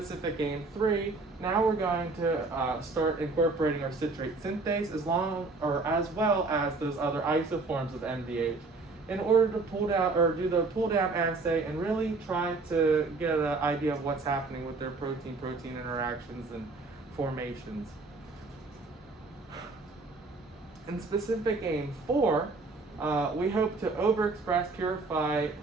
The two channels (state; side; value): quieter; left; 3.7 dB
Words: aim 3, now we're going to start incorporating our citrate synthase as well as those other isoforms of MDH in order to pull down or do the pull down assay and really try to get an idea of what's happening with their protein-protein interactions and formations. In specific aim 4, we hope to overexpress, purify